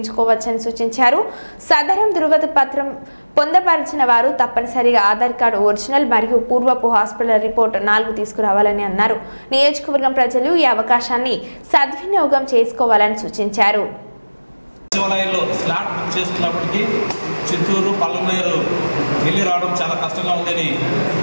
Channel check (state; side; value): inverted; both; correlation -1.00